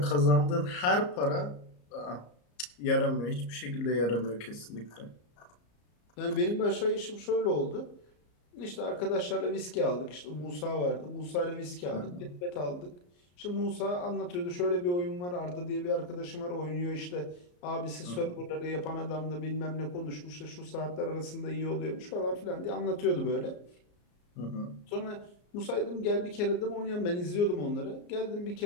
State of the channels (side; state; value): right; late; 34 ms